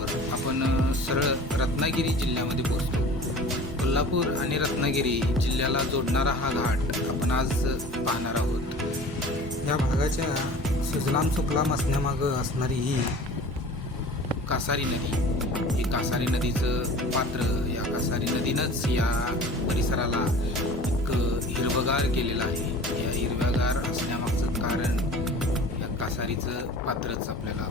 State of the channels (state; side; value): normal; both; correlation 0.42